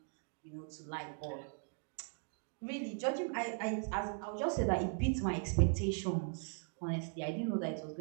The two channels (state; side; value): silent; left; 52 dB below the other